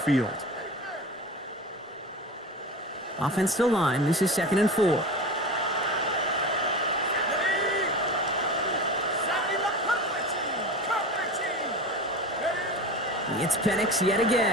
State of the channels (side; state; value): both; normal; correlation 0.30